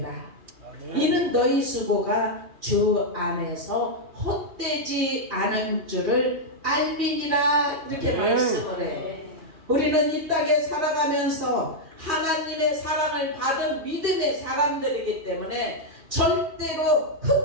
이는 너희 수고가 주 안에서 헛되지 않은 줄을 알미니라 이렇게 말씀을 해요. 우리는 이 땅에 살아가면서 하나님의 사랑을 받은 믿음의 사람들이기 때문에 절대로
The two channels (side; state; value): left; late; 3.1 ms